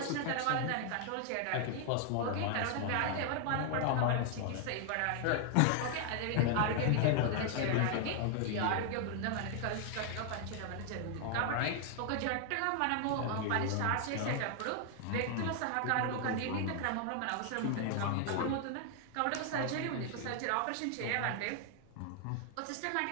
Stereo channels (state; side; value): different; both; correlation 0.00